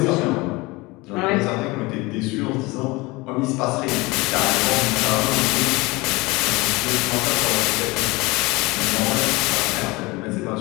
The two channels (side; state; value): right; quieter; 23.2 dB